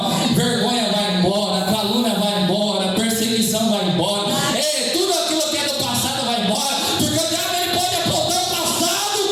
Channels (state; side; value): identical; both; correlation 1.00